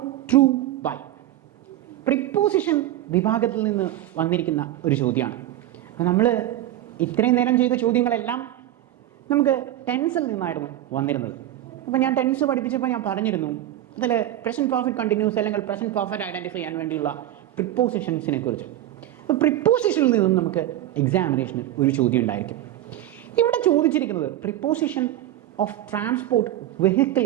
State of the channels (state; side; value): quieter; left; 13.4 dB